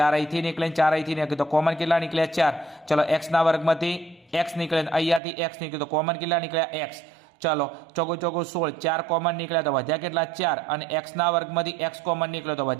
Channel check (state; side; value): drops out; left; at 5.2 s